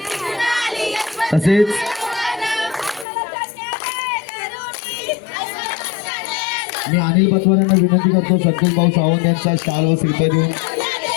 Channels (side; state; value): right; drops out; at 3.1 s